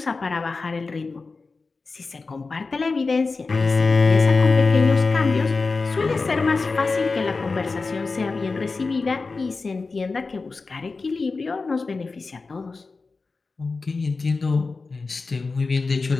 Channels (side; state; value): right; quieter; 4.1 dB